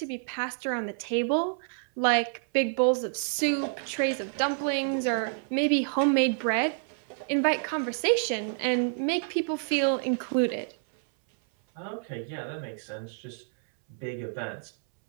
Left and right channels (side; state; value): left; silent; 59 dB below the other